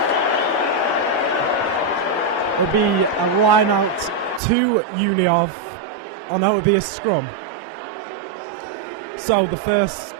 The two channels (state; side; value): drops out; left; at 4.4 s